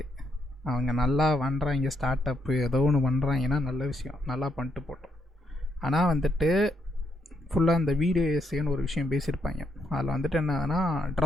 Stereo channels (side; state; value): both; normal; correlation 0.77